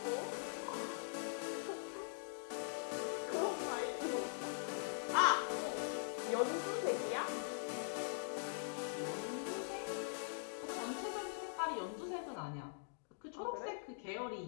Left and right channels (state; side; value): silent; right; digital silence